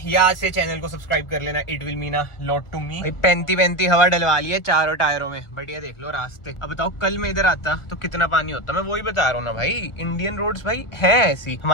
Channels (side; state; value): right; late; 1.4 ms